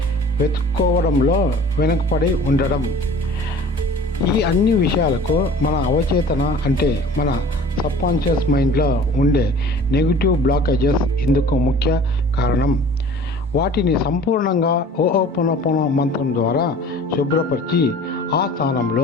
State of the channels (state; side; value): normal; both; correlation 0.46